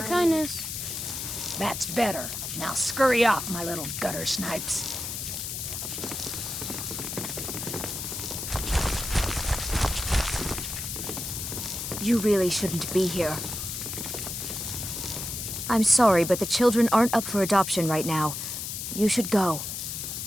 That's better. Now scurry off, my little gutter snipes. You really shouldn't be here. I'm sorry, but the children aren't up for adoption right now. You should go.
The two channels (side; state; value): left; noise; hiss, 5 dB below the sound